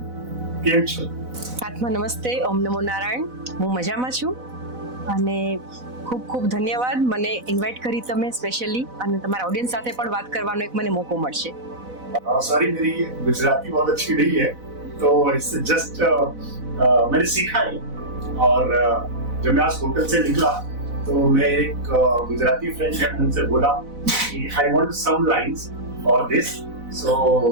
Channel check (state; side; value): late; left; 4.0 ms